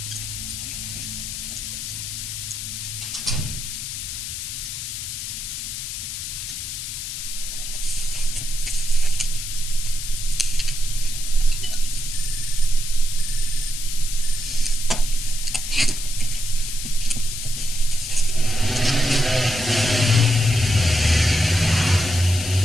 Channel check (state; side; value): noise; left; hiss, 6 dB below the sound